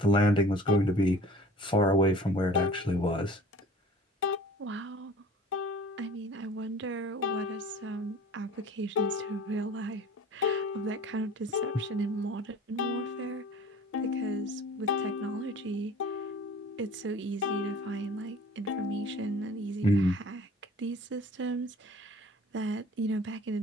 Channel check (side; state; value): both; normal; correlation 0.45